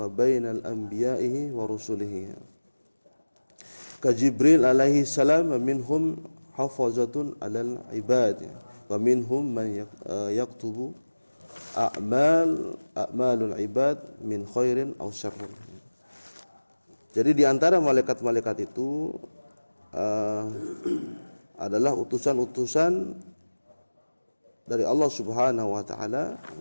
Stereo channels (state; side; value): inverted; both; correlation -1.00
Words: bainal anbiya'ihi wa rusulihi. Ka Jibril alaihi salam, minhum hafazatun alal ibad, wa minhum man yaktubu a'malul ibad min khairin aw syarrin. Jadi di antara malaikat-malaikat itu adalah utusan-utusan dari Allah Subhanahu wa taala,